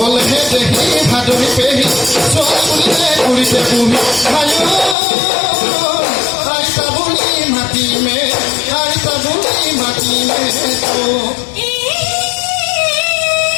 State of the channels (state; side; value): drops out; right; at 5.0 s